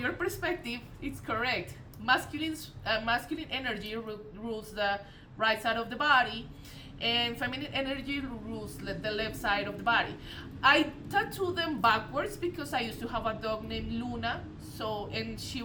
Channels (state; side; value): identical; both; correlation 1.00